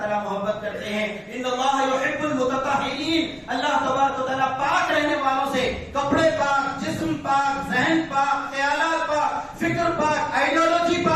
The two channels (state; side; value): identical; both; correlation 1.00